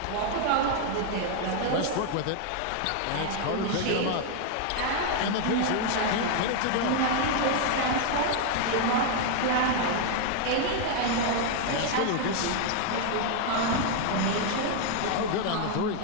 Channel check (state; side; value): different; both; correlation 0.00